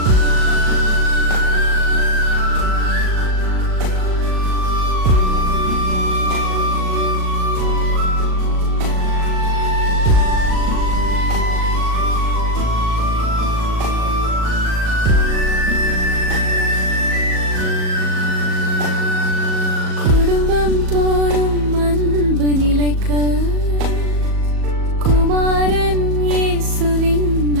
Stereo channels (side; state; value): left; late; 38 ms